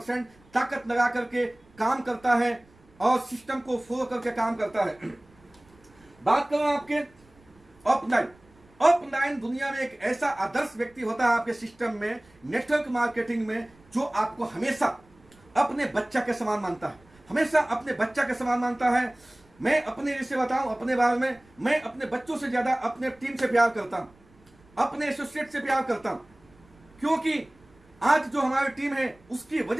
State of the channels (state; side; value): noise; right; rumble, 29 dB below the sound